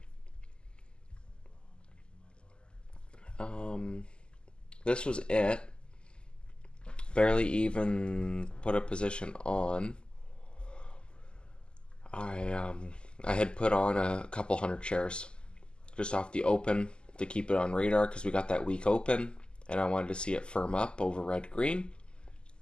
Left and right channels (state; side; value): late; right; 0.049 ms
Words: This was it. Barely even put a position on. I had put on a couple hundred shares just off the open to keep it on radar because we got that week open and I wanted to see it firm up over red green,